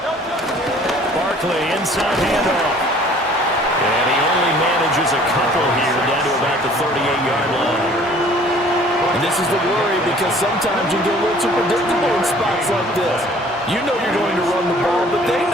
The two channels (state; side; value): normal; both; correlation 0.53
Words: Barkley, inside handoff. And he only manages a couple here down to about the 38-yard line. And this is the worry, because sometimes you get a little too predictable in spots like this. You know you're going to run the ball, but they